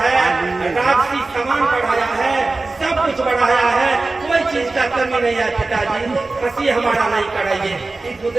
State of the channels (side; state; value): left; quieter; 3.4 dB